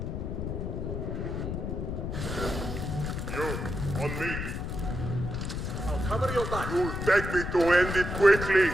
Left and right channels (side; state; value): left; noise; rumble, 4 dB below the sound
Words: You, on me. I'll cover your back. You'll beg me to end it quickly.